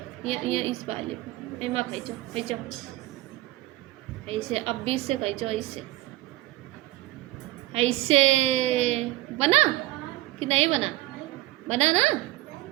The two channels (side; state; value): left; quieter; 17.3 dB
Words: ये इस वाले पे एमा खींचो खींचो ऐसे, अब 20 से खींचो ऐसे, ऐसे बना कि नहीं बना, बना ना।